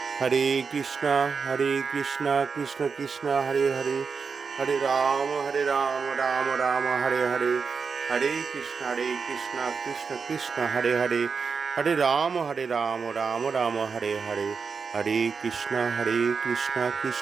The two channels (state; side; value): quieter; left; 5.5 dB